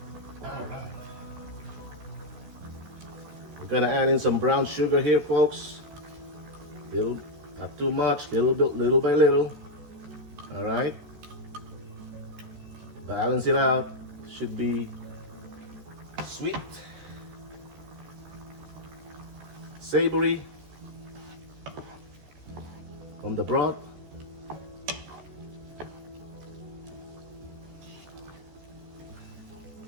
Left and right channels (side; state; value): left; late; 14 ms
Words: Gonna add in some brown sugar here, folks. Little, not too much, little by little. All right. Balance it out. Should be sweet, savory from the broth.